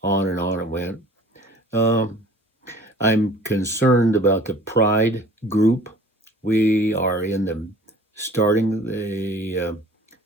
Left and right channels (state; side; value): normal; both; correlation 0.49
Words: on it went. I'm concerned about the Pride group. We are starting